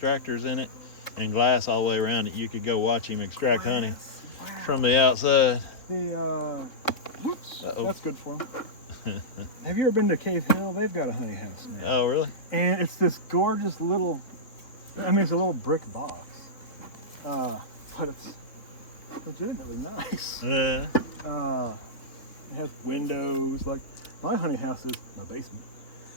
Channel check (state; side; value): late; right; 3.6 ms